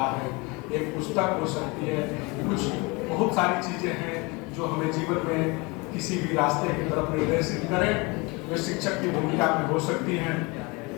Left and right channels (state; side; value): quieter; right; 27.0 dB